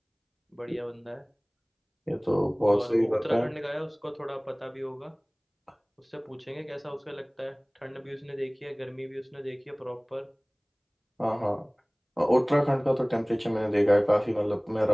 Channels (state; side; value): identical; both; correlation 1.00